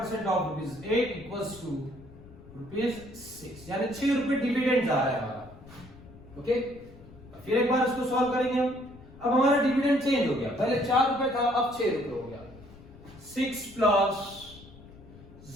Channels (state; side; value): noise; left; rumble, 20 dB below the sound